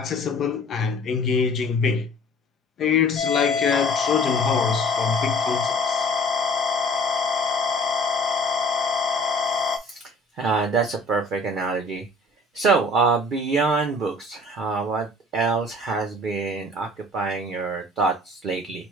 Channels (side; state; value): both; normal; correlation 0.49